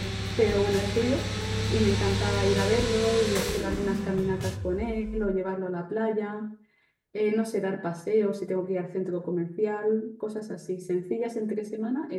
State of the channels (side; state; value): both; identical; correlation 1.00